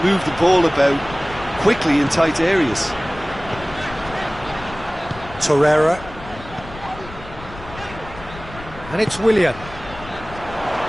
move the ball about quickly in tight areas. Torreira. And it's Willian.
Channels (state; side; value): noise; left; rumble, 15 dB below the sound